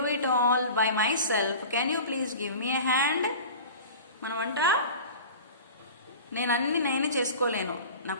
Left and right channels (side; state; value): both; inverted; correlation -0.36